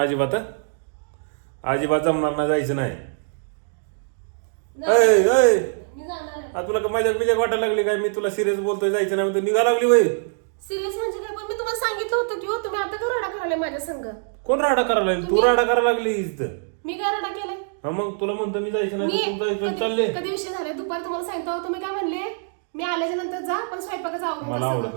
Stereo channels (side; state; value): left; silent; digital silence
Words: अजिबात हं? अजिबात जमणार नाही जायचं नाही ऐ, ऐ. मी जाणार आहे आ, तुला का मजाक बिजाक वाटायला लागली काय मी तुला सिरियस बोलतोय जायचं नाही म्हणतो निघा लागली वय सिरियस म्हणजे काय पण मी तुम्हाला सांगितलं होतं की हो तुम्ही आता का रडा करायला माझ्या संग कोण राडा करायला लागली तू राडा करायला लागली इथं मी काय रडा केलाय हा मग तुला म्हणतो मी जायचं नाही तू जायचं चालले कधी विषय झाले दुपारी तुम्हाला सांगितलं होतं तुम्ही काय म्हणले मी आल्याच्या नंतर जा पण स्वयंपाकाचा मला आवडून आवडत